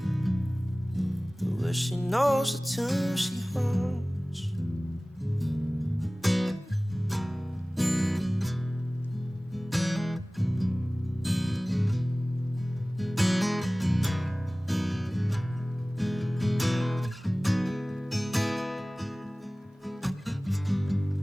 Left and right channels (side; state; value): both; normal; correlation 0.98